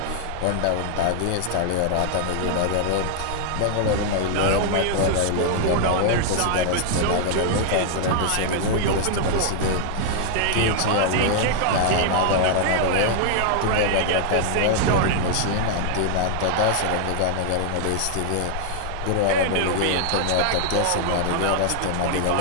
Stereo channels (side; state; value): both; different; correlation 0.00